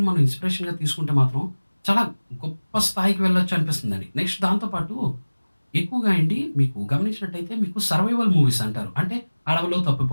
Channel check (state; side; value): inverted; both; correlation -1.00